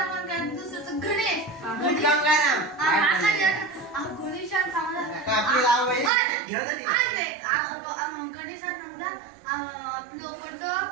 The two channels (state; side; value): drops out; left; at 6.1 s